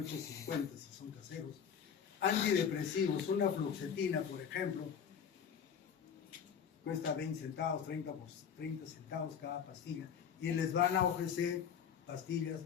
si son caseros. Antidepresivos, una fluoxetina, por ejemplo, cuesta 20 centavos, 30 centavos cada pastilla, y les van a ofrecer pastillas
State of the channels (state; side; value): quieter; right; 7.7 dB